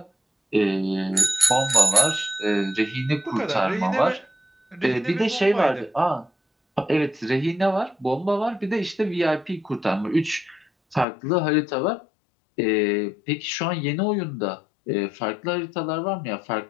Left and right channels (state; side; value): drops out; right; at 11.1 s